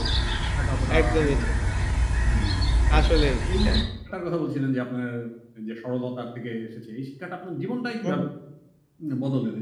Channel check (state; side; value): identical; both; correlation 1.00